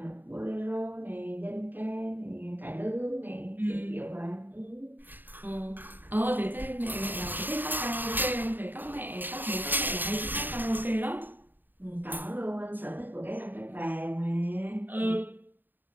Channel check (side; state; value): left; late; 0.091 ms